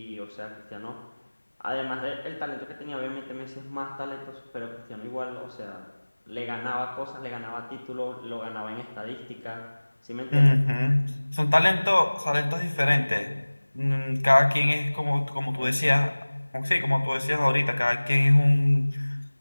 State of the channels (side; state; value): both; inverted; correlation -1.00